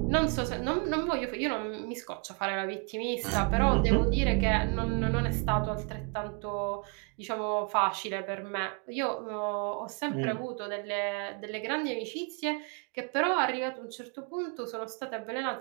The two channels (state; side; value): quieter; left; 34.2 dB